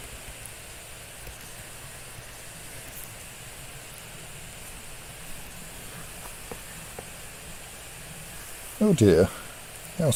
Oh dear, how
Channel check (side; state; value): both; identical; correlation 1.00